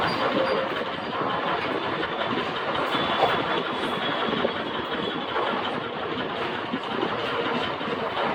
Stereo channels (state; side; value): identical; both; correlation 1.00